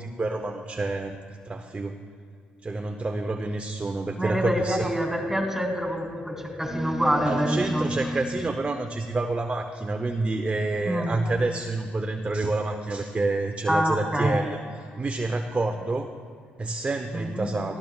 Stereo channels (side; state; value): both; normal; correlation 0.89